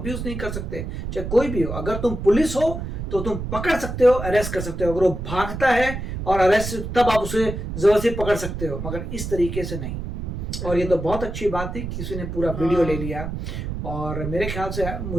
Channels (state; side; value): noise; right; rumble, 6 dB below the sound